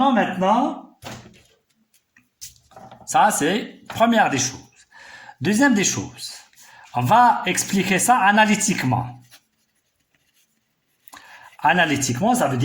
maintenant, ça c'est première des choses. Deuxième des choses, on va expliquer ça analytiquement. Analytiquement, ça veut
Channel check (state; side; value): identical; both; correlation 1.00